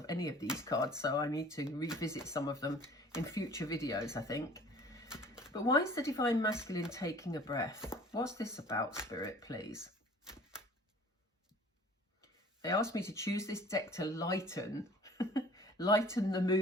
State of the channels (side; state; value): both; normal; correlation 0.49